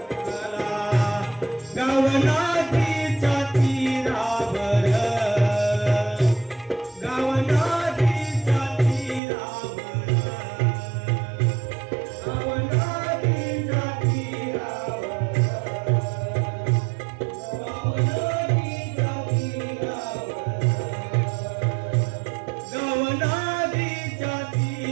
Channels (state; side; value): drops out; left; at 9.2 s